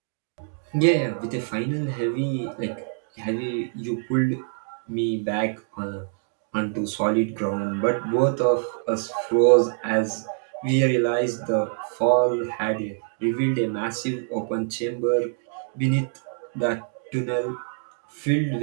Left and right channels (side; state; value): left; silent; digital silence